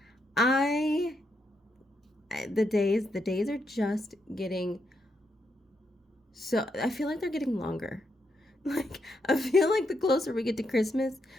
I the days are just getting I feel like they're getting longer. Like I feel like the closer we get to Christmas,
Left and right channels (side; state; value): both; normal; correlation 0.80